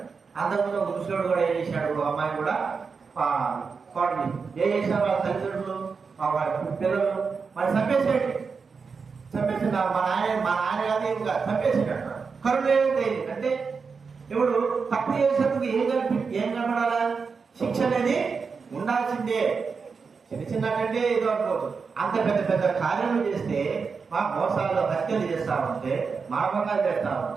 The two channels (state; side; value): quieter; left; 5.2 dB